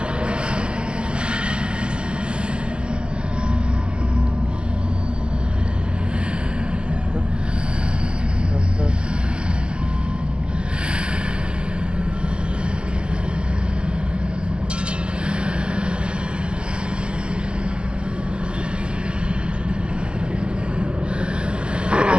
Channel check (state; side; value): late; left; 0.055 ms